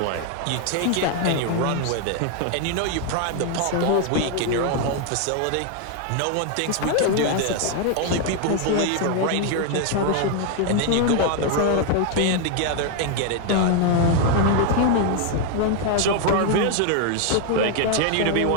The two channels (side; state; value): both; different; correlation 0.00